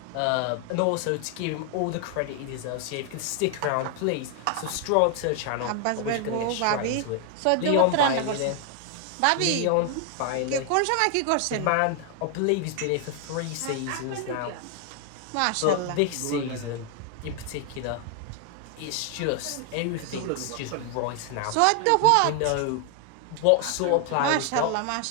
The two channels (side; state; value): both; different; correlation 0.00